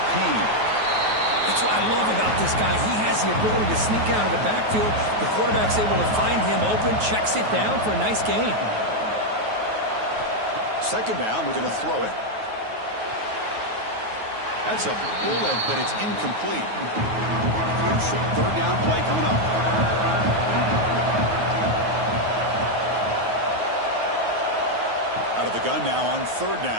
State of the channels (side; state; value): left; late; 9.3 ms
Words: Payne. That's what I love about this guy. He has the ability to sneak out of the backfield. The quarterback's able to find him open, checks it down for a nice gain. Second down, we're going to throw it. That's a bullet, but it's incomplete. Crucial third down play coming up. Out of the gun now on third